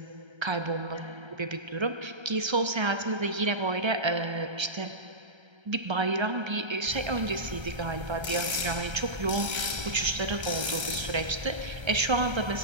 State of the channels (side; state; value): left; late; 1.3 ms